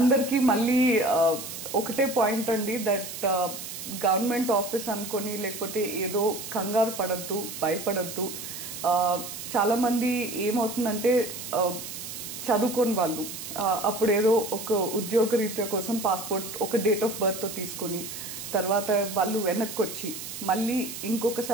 మళ్ళీ ఒకటే పాయింట్ అండి, దట్ గవర్నమెంట్ ఆఫీస్ అనుకొని లేకపోతే ఏదో కంగారు పడద్దు, భయపడద్దు. చాలా మంది ఏమవుతుందంటే చదువుకోని వాళ్ళు అప్పుడు ఏదో ఒక ఉద్యోగ రీత్యా కోసం పాస్పోర్ట్ ఒక డేట్ ఆఫ్ బర్త్ తో తీసుకుని తర్వాత వాళ్ళు వెనక్కి వచ్చి మళ్ళీ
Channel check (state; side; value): noise; right; hiss, 9 dB below the sound